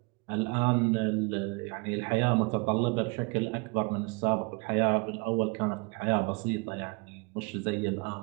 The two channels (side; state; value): left; quieter; 29.6 dB